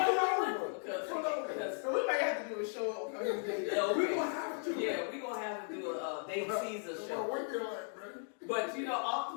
Because So we might have to do a show. We gonna have to. Yeah, we gonna have to do a Dave Caesar A show. winking light, man. But you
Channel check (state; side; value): silent; right; 53 dB below the other